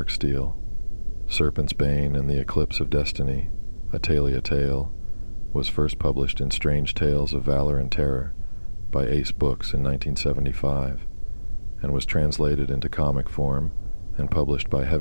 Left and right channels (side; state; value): both; inverted; correlation -1.00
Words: Steel. Serpent's Bane and the Eclipse of Destiny, a Taylia tale, was first published in Strange Tales of Valor and Terror by Ace Books in 1975 and was translated into comic form and published by